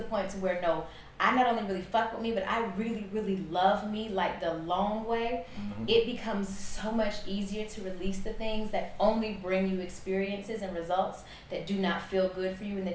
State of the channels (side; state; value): both; identical; correlation 1.00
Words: point to where, no, I not only really fuck with me, but I really, really love me like the long way, it becomes so much easier to release the things that only bring you experiences and results that do not feel good for you and